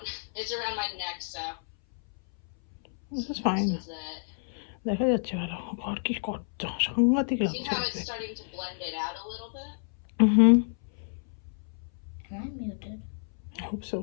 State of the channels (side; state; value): right; silent; 58 dB below the other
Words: It's around my neck, so. This is fine. This is it. দেখা যাচ্ছে ভালো ঘর কি কত সাংঘাতিক See লাগছে how it's starting to blend it out a little bit? Am I muted? I hope so.